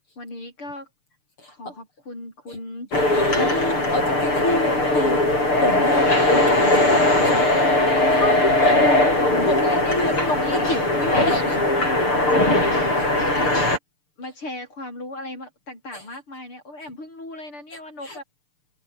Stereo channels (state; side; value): late; right; 6.7 ms